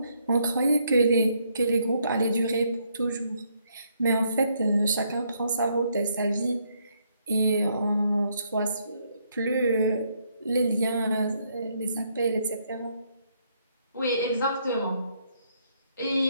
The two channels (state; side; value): inverted; both; correlation -0.73